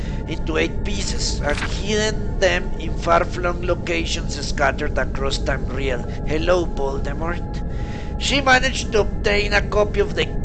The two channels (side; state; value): both; identical; correlation 1.00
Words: into 8 pieces and hidden them in far-flung locations scattered across Tamriel. Hello, Voldemort. She managed to obtain a copy of the